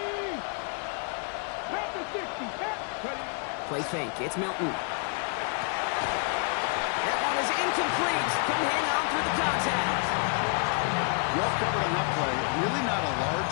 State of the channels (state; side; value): quieter; right; 39.9 dB